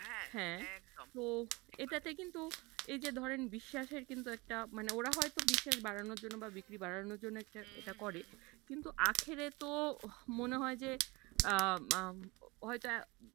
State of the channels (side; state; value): left; quieter; 24.6 dB